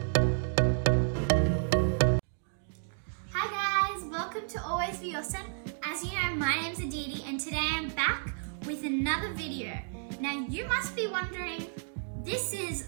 guys, welcome to Always Be Awesome. As you know, my name's Aditi and today I'm back with another video. Now you must be wondering, this is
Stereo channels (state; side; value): silent; left; digital silence